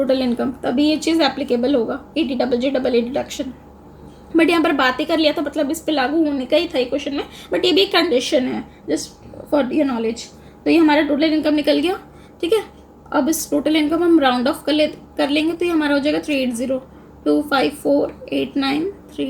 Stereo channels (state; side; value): identical; both; correlation 1.00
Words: इनकम, तभी ये चीज़ एप्लीकेबल होगा 80JJAA डिडक्शन। बट यहाँ पर बात ही कर लिया तो मतलब इस पर लागू होने का ही था क्वेश्चन में, बट ये भी एक कंडीशन है जस्ट फॉर योर नॉलेज। तो ये हमारा टोटल इनकम निकल गया, ठीक है। अब इस टोटल इनकम हम राउंड ऑफ कर लेंगे, तो ये हमारा हो जाएगा